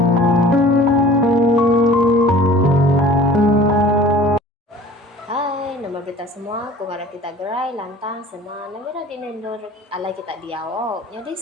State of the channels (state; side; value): normal; both; correlation 0.45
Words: Nama kita semua, kung kita gerai, lantang, senang, namira dinendor alay kita diawo. Jadi